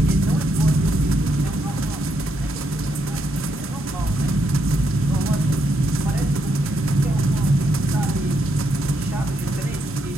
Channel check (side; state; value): both; normal; correlation 0.78